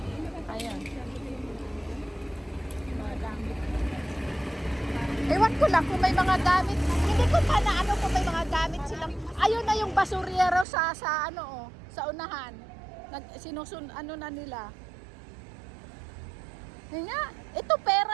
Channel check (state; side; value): drops out; left; at 10.7 s